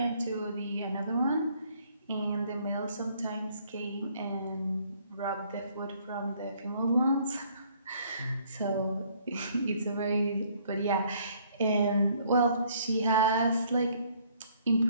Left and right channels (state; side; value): inverted; both; correlation -0.62